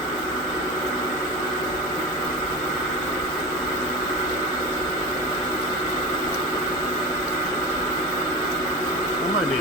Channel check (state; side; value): normal; both; correlation 0.28